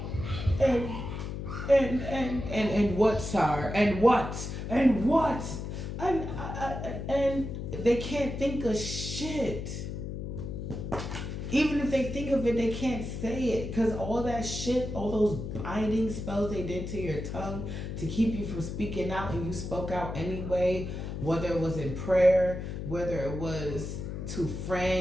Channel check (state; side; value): noise; left; hum, 6 dB below the sound